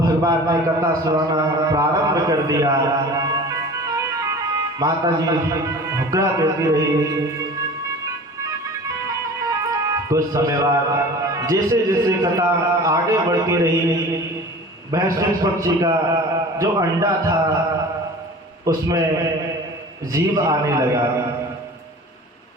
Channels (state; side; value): normal; both; correlation 0.40